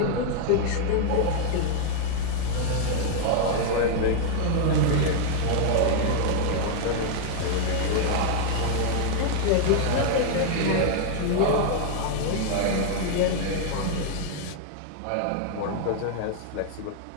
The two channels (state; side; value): different; both; correlation -0.01